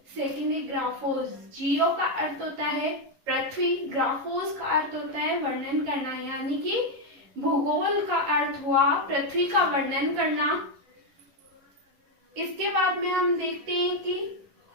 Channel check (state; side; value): late; left; 11 ms